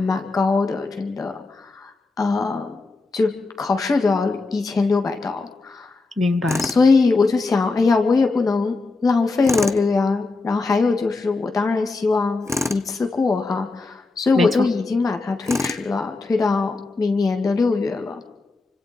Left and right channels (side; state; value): right; quieter; 3.6 dB